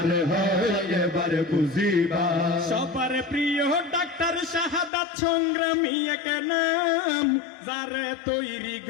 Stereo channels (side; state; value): right; drops out; at 4.9 s